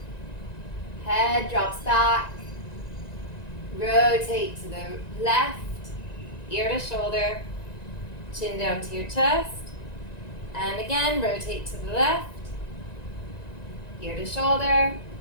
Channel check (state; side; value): late; right; 1.9 ms